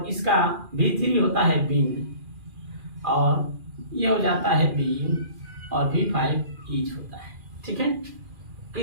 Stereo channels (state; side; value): late; left; 2.4 ms